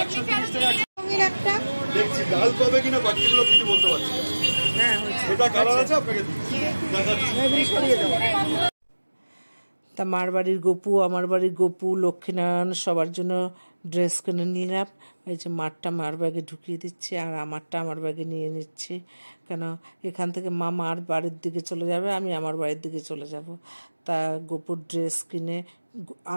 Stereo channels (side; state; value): both; inverted; correlation -1.00